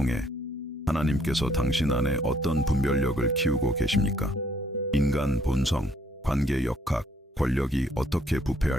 하나님께서 당신 안에 어떤 분별력을 키우고 계십니까? 인간 본성, 관계 역학, 권력이 어떻게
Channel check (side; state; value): both; normal; correlation 0.67